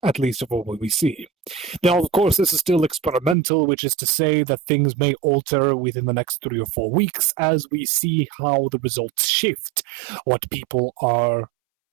at least of what we see. Now, of course, this is still experimental, which is to say that things may alter within the next 3 or 4 weeks as we see how the results shift, what people are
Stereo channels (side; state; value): left; drops out; at 3.4 s